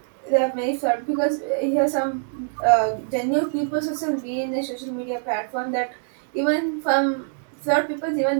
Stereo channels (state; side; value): silent; left; digital silence